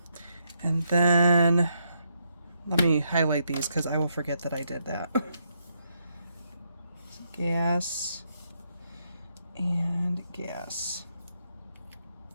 And then let me highlight these because I will forget that I did that. Gas and gas.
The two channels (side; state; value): both; inverted; correlation -0.78